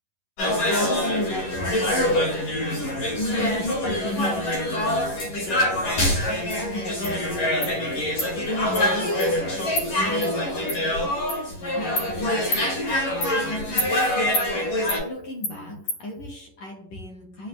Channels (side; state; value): right; late; 11 ms